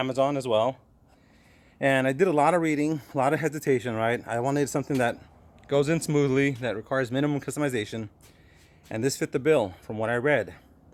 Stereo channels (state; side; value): identical; both; correlation 1.00